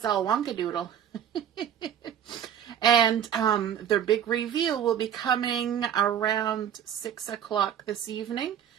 all wonkadoodle. And the big reveal will be coming around 6 o'clock this evening.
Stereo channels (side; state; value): left; quieter; 9.3 dB